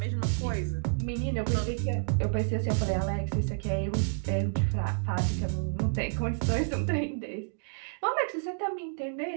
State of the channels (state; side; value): silent; left; digital silence